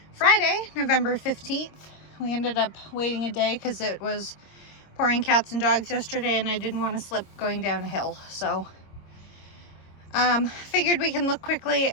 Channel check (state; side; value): late; right; 26 ms